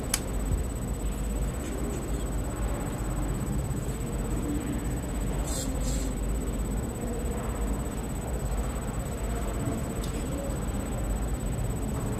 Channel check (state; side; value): identical; both; correlation 1.00